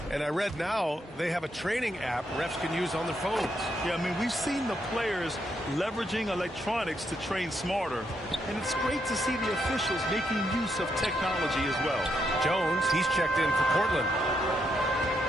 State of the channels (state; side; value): normal; both; correlation 0.78